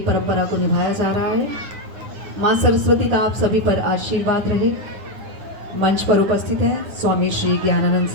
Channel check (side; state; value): left; late; 9.5 ms